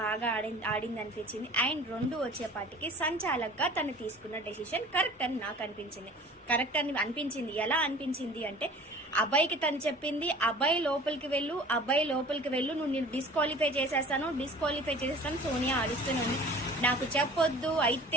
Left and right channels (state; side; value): normal; both; correlation 0.45